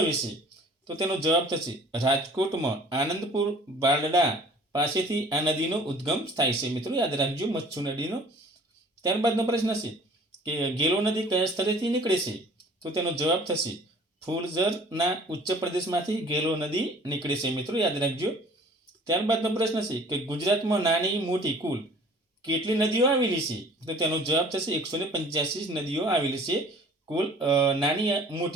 છે? તો તેનો જવાબ થશે રાજકોટમાં આનંદપુર બારડા પાસેથી આ નદીનો ઉદ્ગમ થાય છે મિત્રો. યાદ રાખજો. મચ્છુ નદીનો. ત્યારબાદનો પ્રશ્ન છે કે ગેલો નદી કયા સ્થળેથી નીકળે છે? તો તેનો જવાબ થશે ફૂલઝરના ઉચ્ચ પ્રદેશમાંથી ગેલો નદી નીકળે છે મિત્રો. યાદ રાખજો. ત્યારબાદનો પ્રશ્ન છે કે ગુજરાતમાં નાની મોટી કુલ કેટલી નદીઓ આવેલી છે? તો તેનો જવાબ થશે 185 નદીઓ આવેલી છે. કુલ નાની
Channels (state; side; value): normal; both; correlation 0.50